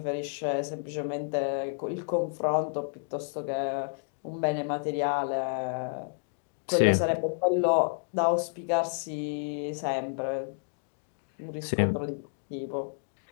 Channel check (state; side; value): silent; right; digital silence